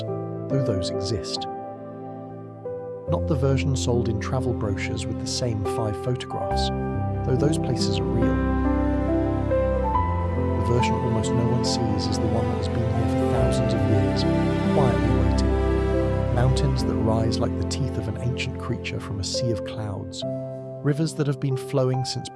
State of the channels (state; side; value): identical; both; correlation 1.00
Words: though those exist. Not the version sold in travel brochures with the same 5 photographs, though those places are real. The version almost no one sees is the one that has been here for thousands of years, quietly waiting. Mountains that rise like the teeth of an ancient creature from a sea of clouds. Rivers that have been flowing since